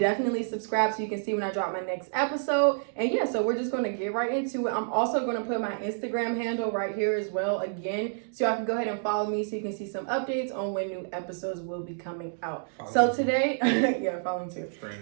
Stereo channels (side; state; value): left; silent; digital silence